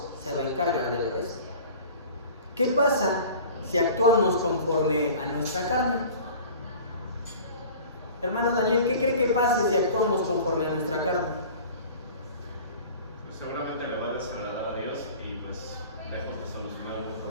se va a encargar del resto. ¿Qué pasa si actuamos conforme a nuestra carne? Hermano Daniel, ¿qué cree que pase si actuamos conforme a nuestra carne? Pues seguramente le va a desagradar a Dios y pues lejos de solucionar algún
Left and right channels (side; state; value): both; inverted; correlation -0.42